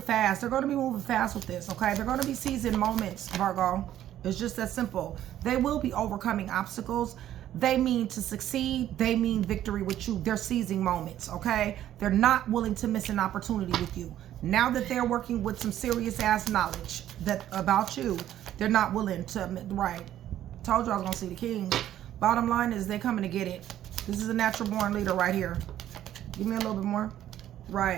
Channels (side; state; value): left; quieter; 12.0 dB